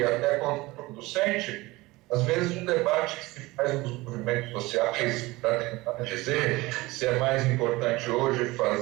até contraproducente, às vezes, um debate que se faz nos movimentos sociais para tentar dizer se é mais importante hoje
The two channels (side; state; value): left; quieter; 20.9 dB